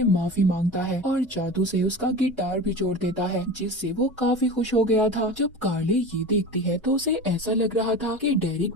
माफी मांगता है और जादू से उसका गिटार भी जोड़ देता है, जिससे वो काफी खुश हो गया था। जब कार्ले ये देखती है तो उसे ऐसा लग रहा था कि डेरिक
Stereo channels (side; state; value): both; normal; correlation 0.31